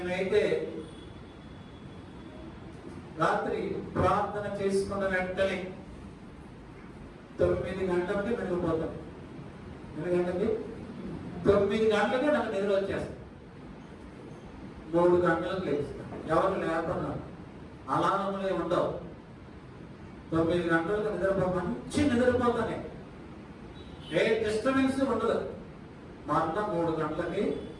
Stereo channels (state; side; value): identical; both; correlation 1.00